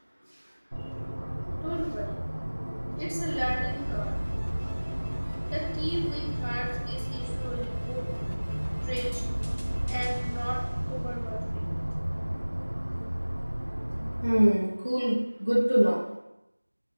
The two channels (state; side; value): inverted; both; correlation -1.00